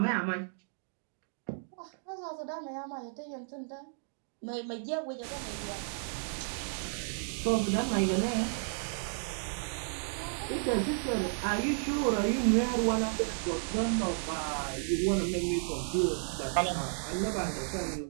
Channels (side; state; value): left; silent; digital silence